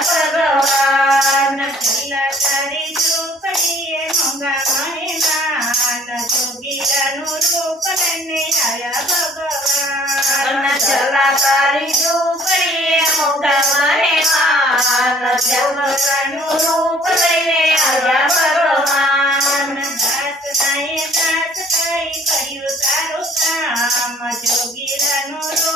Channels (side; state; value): both; normal; correlation 0.56